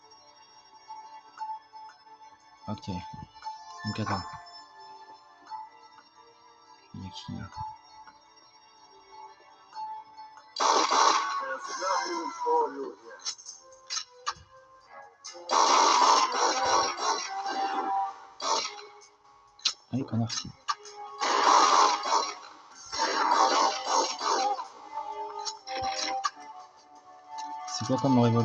Ok. Donc attends. Il y a qui là? Allez, connard. C'est quoi comme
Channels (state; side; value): identical; both; correlation 1.00